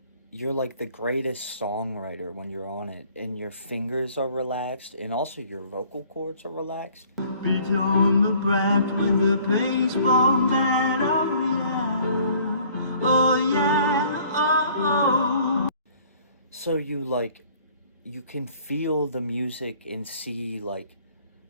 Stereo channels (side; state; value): both; inverted; correlation -0.56